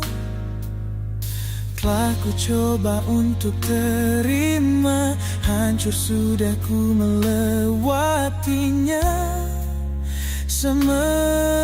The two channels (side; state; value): both; identical; correlation 1.00